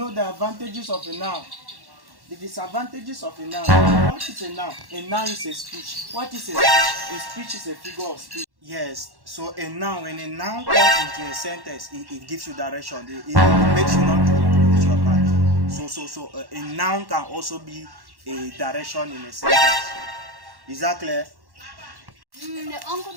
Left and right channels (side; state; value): left; late; 1.1 ms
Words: the advantages of a noun, the disadvantages of a noun. What is a noun? A noun is a speech. What is a speech? A speech is a figure of speech. Yes, so a noun, when a noun comes into a sentence, it gives you direction. It makes you not to lose your path. So a noun can also be a direction in a sentence. Is that clear? The uncle